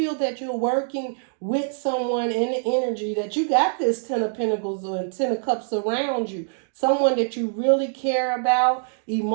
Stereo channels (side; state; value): left; silent; digital silence